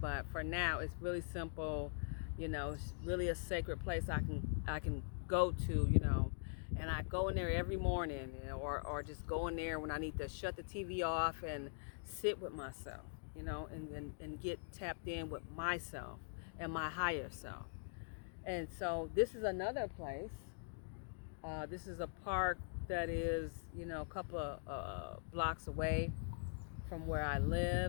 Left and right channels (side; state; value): right; silent; digital silence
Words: for now, it's really simple. It's really a sacred place I can go to, and I go in there every morning, or just go in there when I need to shut the TV off and sit with myself, and get tapped in with myself and my higher self. And so this is another place. This is a park that is, a couple of blocks away from where I